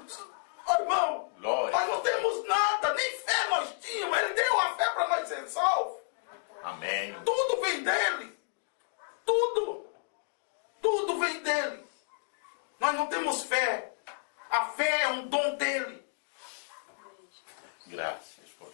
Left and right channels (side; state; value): right; silent; digital silence